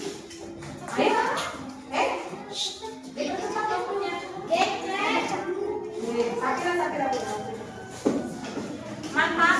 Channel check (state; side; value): identical; both; correlation 1.00